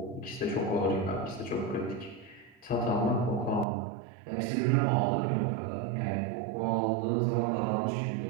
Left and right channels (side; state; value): left; drops out; at 3.7 s